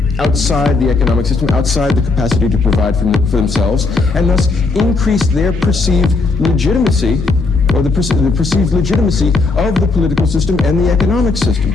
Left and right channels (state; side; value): quieter; right; 3.7 dB